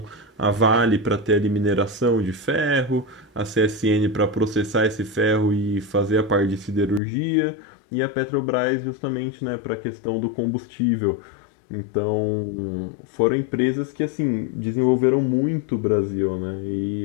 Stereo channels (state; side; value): drops out; right; at 7.0 s